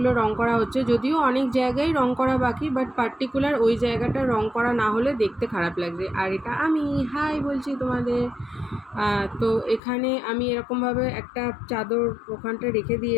রং করা হচ্ছে। যদিও অনেক জায়গায় রং করা বাকি, বাট পার্টিকুলার ওই জায়গাটা রং করা না হলে দেখতে খারাপ লাগছে। আর এটা আমি হাই বলছি তোমাদের। তো এখানে আমি এরকমভাবে একটা চাদর ওখানটা রেখে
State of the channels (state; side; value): drops out; right; at 9.8 s